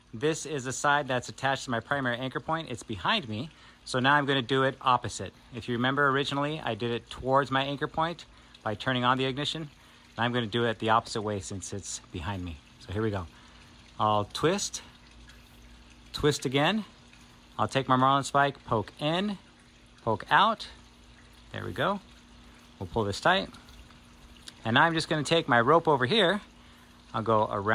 This is the side that's attached to my primary anchor point. It's behind me. So now I'm going to do it opposite. If you remember originally, I did it towards my anchor point by turning on the ignition. Now I'm going to do it the opposite way since it's behind me. So here we go. I'll twist, twist again. I'll take my marlin spike, poke in, poke out. There we go. We'll pull this tight. And now I'm just going to take my rope over here. I'll go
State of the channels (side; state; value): both; identical; correlation 1.00